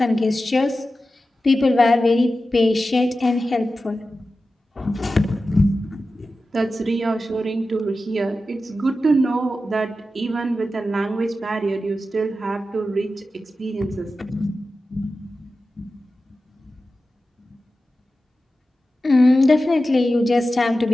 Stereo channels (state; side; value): normal; both; correlation 0.93